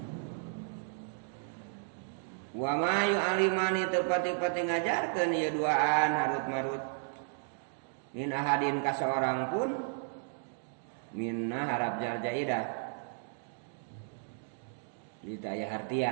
Wa ma yu'alimani tepati-pati ngajarkeun ieu duaan Harut Marut min ahadin ka seorang pun minna harap jar jaidah ditaya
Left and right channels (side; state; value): left; silent; digital silence